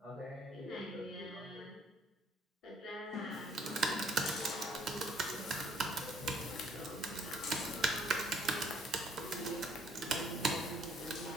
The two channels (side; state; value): both; normal; correlation 0.64